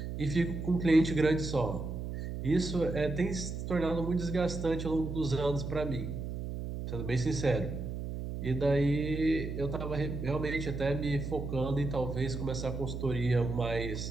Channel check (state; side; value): noise; right; hum, 5 dB below the sound